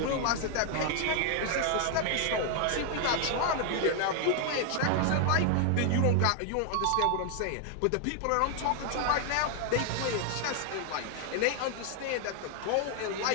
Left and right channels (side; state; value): both; different; correlation 0.00